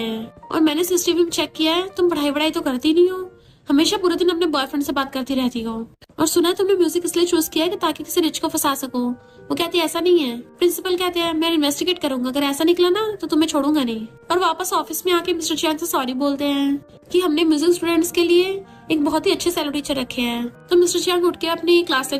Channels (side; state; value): both; identical; correlation 1.00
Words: हैं, और मैंने सीसीटीवी में चेक किया है, तुम पढ़ाई तो करती नहीं हो, हमेशा पूरे दिन अपने बॉयफ्रेंड से बात करती रहती हो, और सुना है तुमने म्यूजिक इसलिए चूज किया है कि ताकि किसी रिच को फंसा सको। वो कहती है ऐसा नहीं है। प्रिंसिपल कहते हैं मैं इन्वेस्टिगेट करूंगा, अगर ऐसा निकला ना तो तुम्हें छोड़ूंगा नहीं। और वापस ऑफिस में आके मिस्टर चियांग से सॉरी बोलते हैं कि हमने म्यूजिक स्टूडेंट्स के लिए एक बहुत ही अच्छे सेलो टीचर रखे हैं। तो मिस्टर चियांग उठ के अपनी क्लास